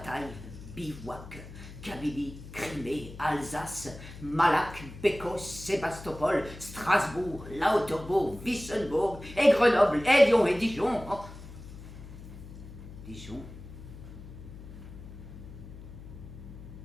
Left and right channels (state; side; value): noise; left; hum, 14 dB below the sound